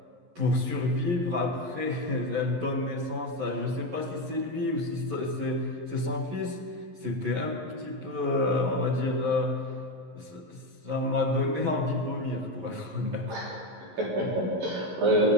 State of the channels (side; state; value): left; late; 11 ms